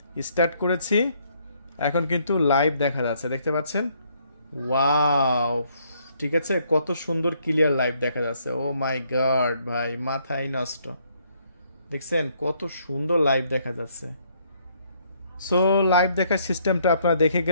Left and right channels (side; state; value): both; inverted; correlation -0.68